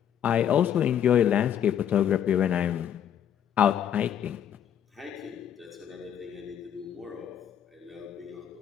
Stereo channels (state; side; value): quieter; right; 9.5 dB